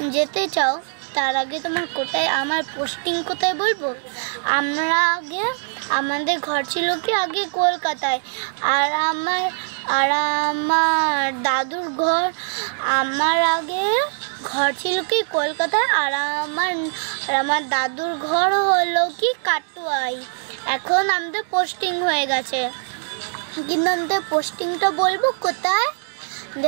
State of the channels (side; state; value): left; silent; digital silence